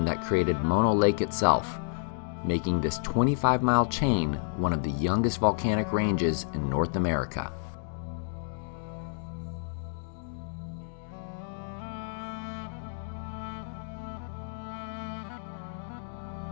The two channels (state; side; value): silent; right; digital silence